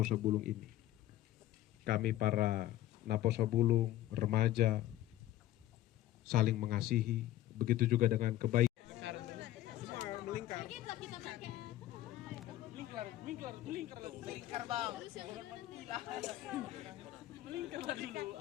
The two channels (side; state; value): right; quieter; 14.2 dB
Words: Bulung ini. Kami para Naposo Bulung, remaja, saling mengasihi, begitu juga dengan kebaikan. Melingkar bang. Melingkar dulu.